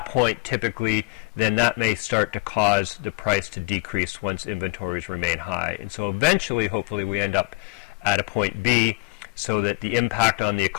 point, typically, then that may start to cause the price to decrease once inventories remain high. And so eventually, hopefully, we end up at a point B so that the impact on the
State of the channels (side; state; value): right; quieter; 28.5 dB